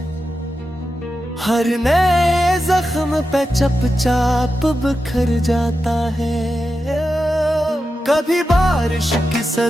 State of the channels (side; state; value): both; normal; correlation 0.90